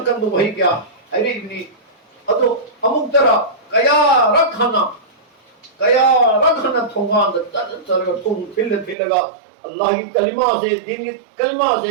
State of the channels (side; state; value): left; drops out; at 9.0 s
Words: do bhai kya are ibni adu amuk tara kaya rakhana thongan da tar thong thilaga Allah ki kalima se din ki kalima